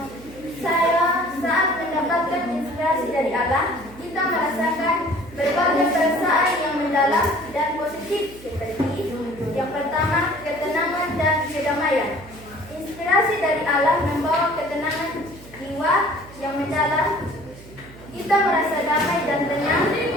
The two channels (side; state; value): right; noise; hum, 19 dB below the sound